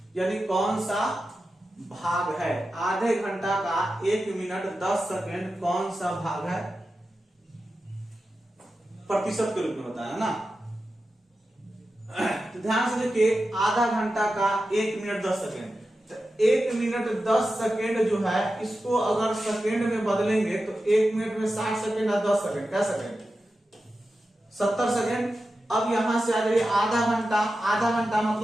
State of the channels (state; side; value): normal; both; correlation 0.92